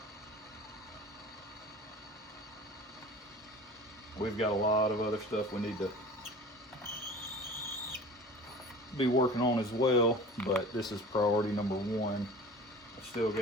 we've got a lot of other stuff we need to be working on as well, but this is priority number one. I've still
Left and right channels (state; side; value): normal; both; correlation 0.40